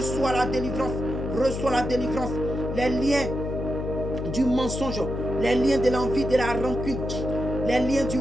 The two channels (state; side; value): noise; left; hum, 4 dB below the sound